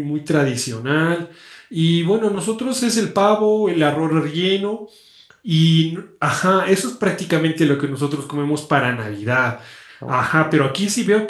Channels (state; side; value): identical; both; correlation 1.00